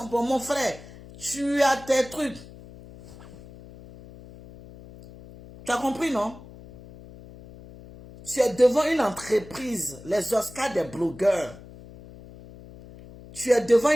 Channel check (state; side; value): noise; left; hum, 19 dB below the sound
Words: bons. Mon frère, tu as tes trucs. Tu as compris, non? Tu es devant une entreprise, les Oscars des blogueurs. Tu es devant